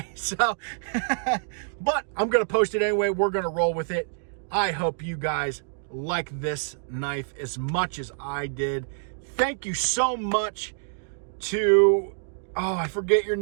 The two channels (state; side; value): silent; left; digital silence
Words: So, but I'm going to post it anyway. We're going to roll with it. I hope you guys like this knife as much as I did. Thank you so much to, oh, I forget your